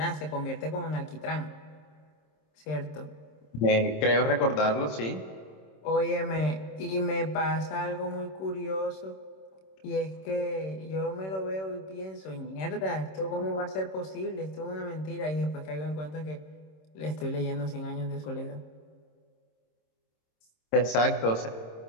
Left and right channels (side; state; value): right; late; 26 ms